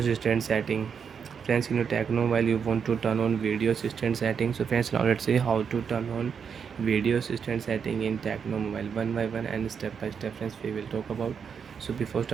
setting. Friends, in your Tecno mobile you want to turn on video assistant setting. So friends, now let's see how to turn on video assistant setting in Tecno mobile one by one and step by step friends we will talk about. So before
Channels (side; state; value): left; quieter; 6.7 dB